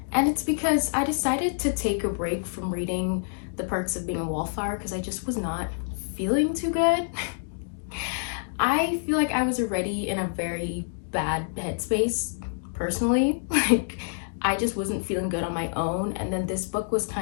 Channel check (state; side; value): silent; right; digital silence